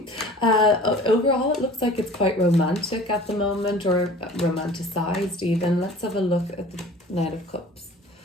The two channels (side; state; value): both; normal; correlation 0.45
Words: Overall, it looks like it's quite romantic at the moment, or romanticized even. Let's have a look at the Knight of Cups.